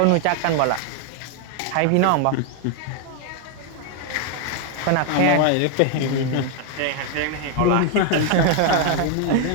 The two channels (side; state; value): both; different; correlation 0.00